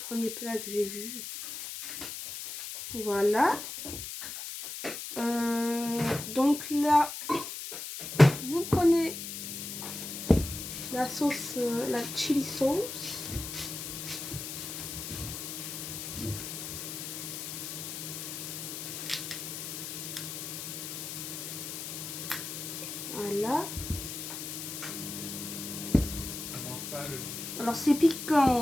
plat que j'ai vu. Voilà. Donc là, vous prenez la sauce, la chili sauce. Voilà. Alors c'est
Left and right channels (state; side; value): noise; left; hiss, 7 dB below the sound